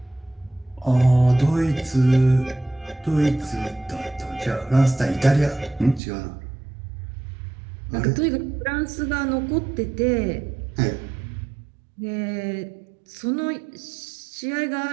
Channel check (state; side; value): drops out; left; at 6.0 s